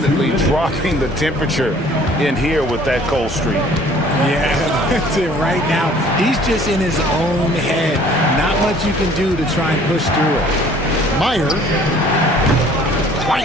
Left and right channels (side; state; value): both; normal; correlation 0.54